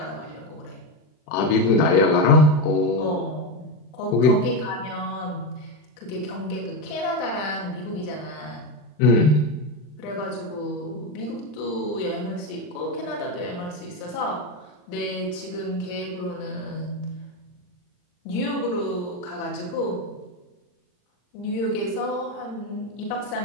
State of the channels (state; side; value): late; right; 39 ms